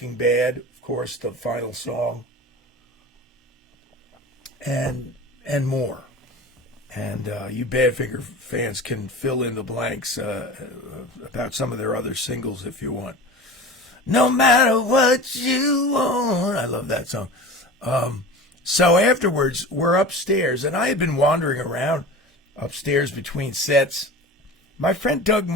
Bad, of course, the final song, and more. And you Badfinger fans can fill in the blanks about some of their other singles if you want. No matter what you want. I love that song. So afterwards, we're upstairs, and I had been wandering around upstairs between sets. My friend Doug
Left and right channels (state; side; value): normal; both; correlation 0.34